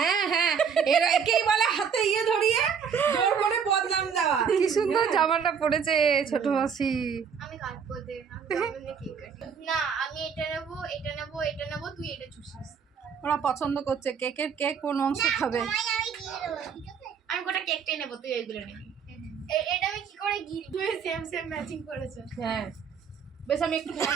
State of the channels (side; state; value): left; quieter; 6.8 dB